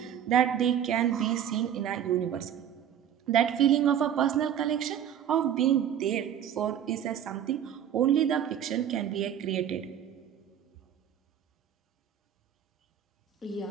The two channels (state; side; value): quieter; left; 9.6 dB